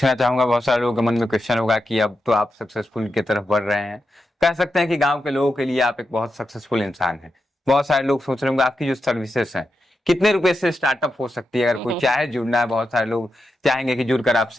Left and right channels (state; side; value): normal; both; correlation 0.88